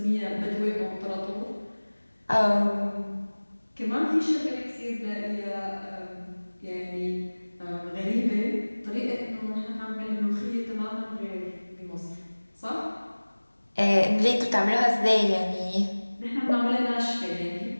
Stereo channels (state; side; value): inverted; both; correlation -1.00